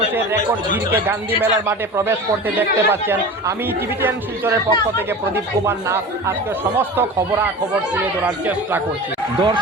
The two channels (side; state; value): both; normal; correlation 0.34